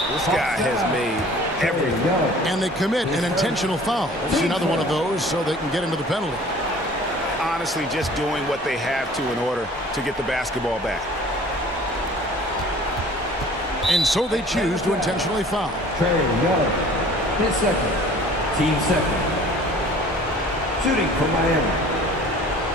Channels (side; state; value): both; normal; correlation 0.49